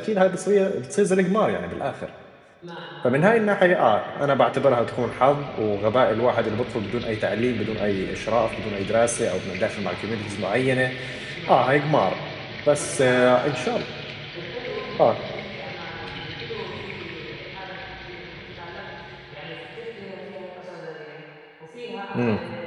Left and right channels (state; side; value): identical; both; correlation 1.00